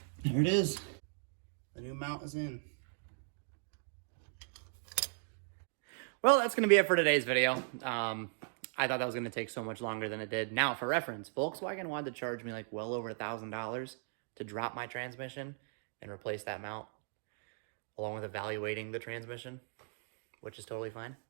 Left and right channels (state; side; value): silent; left; digital silence